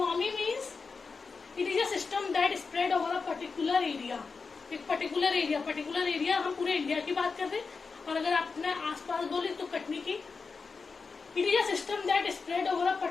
means it is a system that spread over a particular area. एक पर्टिकुलर एरिया हम पूरे इंडिया की बात कर रहे हैं, और अगर आप अपने आसपास बोले तो कटनी की. It is a system that spread over a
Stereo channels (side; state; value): right; quieter; 4.7 dB